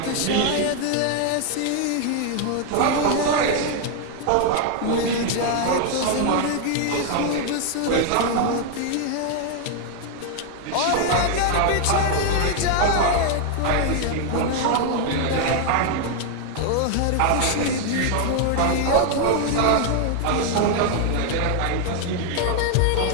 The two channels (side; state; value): both; different; correlation 0.00